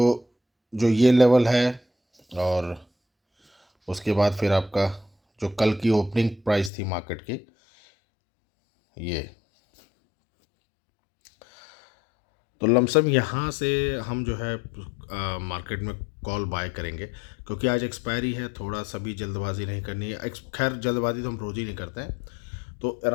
जो ये लेवल है और उसके बाद फिर आपका जो कल की ओपनिंग प्राइस थी मार्केट की, ये तो लमसम यहाँ से हम जो है मार्केट में कॉल बाय करेंगे, क्योंकि आज एक्सपायरी है। थोड़ा सा भी जल्दबाजी नहीं करनी है। खैर, जल्दबाजी तो हम रोज़ ही नहीं करते हैं। तो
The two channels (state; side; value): drops out; right; at 6.7 s